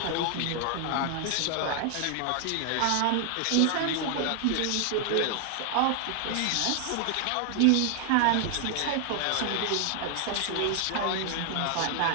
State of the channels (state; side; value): different; both; correlation 0.00